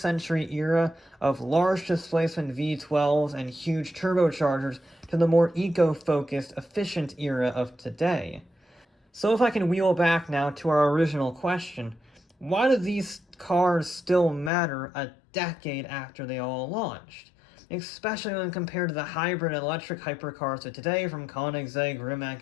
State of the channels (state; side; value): drops out; right; at 14.5 s